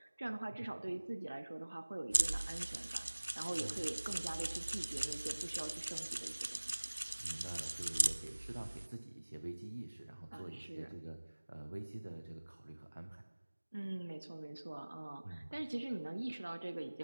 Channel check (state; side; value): inverted; both; correlation -1.00